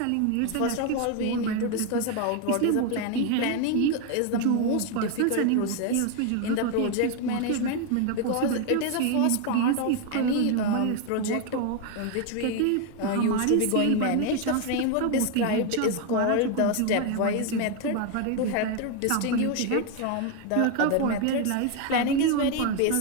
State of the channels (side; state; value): both; different; correlation 0.01